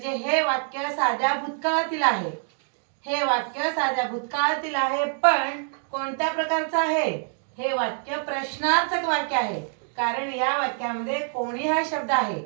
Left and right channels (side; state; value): left; silent; 60 dB below the other